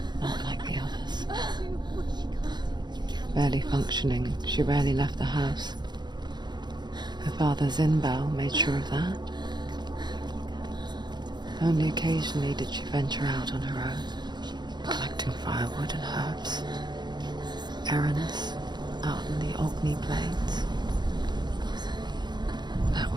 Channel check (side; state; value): left; late; 0.21 ms